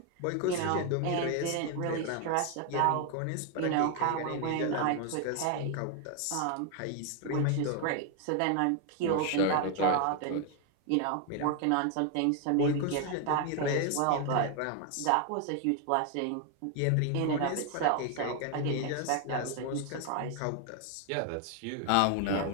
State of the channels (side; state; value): both; different; correlation 0.01